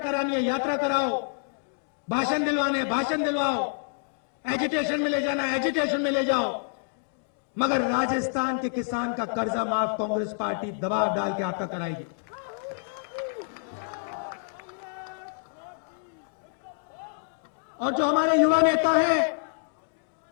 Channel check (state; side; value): silent; right; digital silence